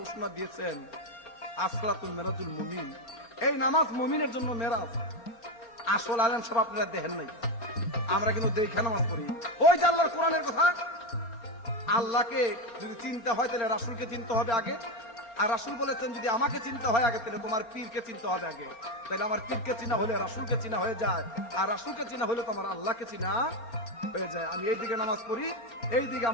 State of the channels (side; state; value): right; late; 4.4 ms